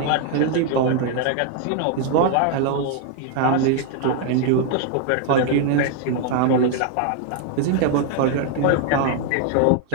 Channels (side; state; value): both; different; correlation 0.00